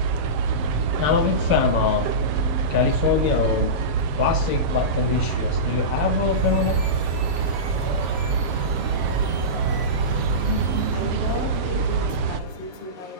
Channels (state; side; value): late; left; 7.8 ms